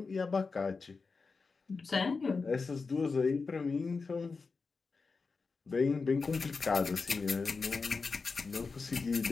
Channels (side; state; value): right; quieter; 4.5 dB